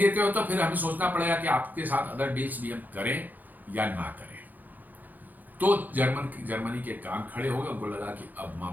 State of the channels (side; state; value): left; late; 0.084 ms